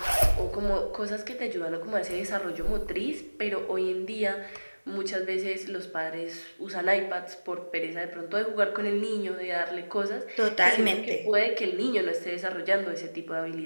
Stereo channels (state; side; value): inverted; both; correlation -1.00